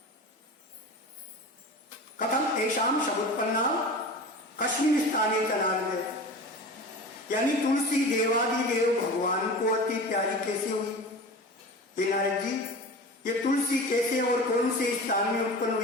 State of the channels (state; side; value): normal; both; correlation 0.34